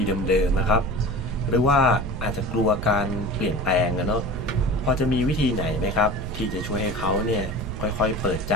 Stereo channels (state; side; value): noise; right; rumble, 7 dB below the sound